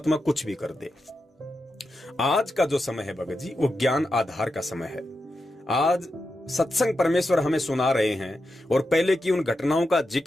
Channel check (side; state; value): both; normal; correlation 0.88